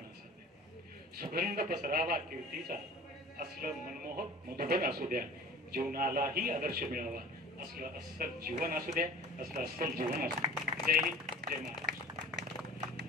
असू द्या। सुगंध पसरावा कीर्तीचा असलं मनमोहक मधुबन असू द्या। जीवनालाही आदर्श मिळावा असलं अस्सल जीवन असू द्या, असलं अस्सल जीवन असू द्या। जय हिंद, जय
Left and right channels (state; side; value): normal; both; correlation 0.42